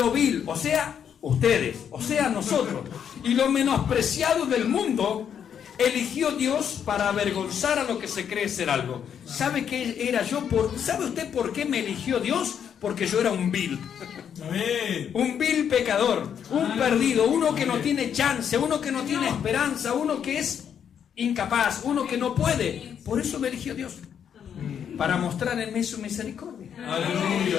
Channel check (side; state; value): right; quieter; 8.3 dB